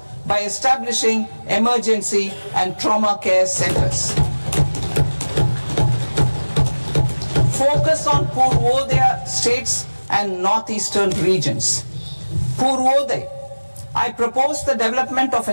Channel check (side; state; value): both; inverted; correlation -1.00